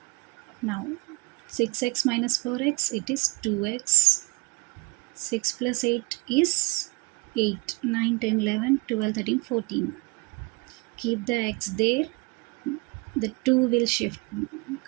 Now 6x minus 4x, it is 2x. 6 plus 8 is 8, 9, 10, 11, 12, 13, 14. Keep the x there, the 2 will shift,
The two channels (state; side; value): quieter; left; 27.7 dB